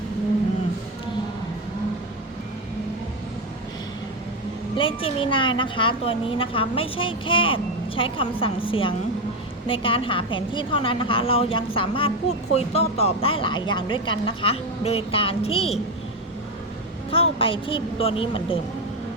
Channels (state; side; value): normal; both; correlation 0.12